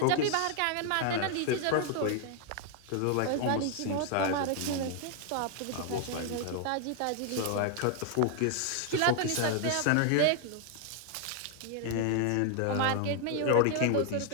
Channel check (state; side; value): different; both; correlation 0.00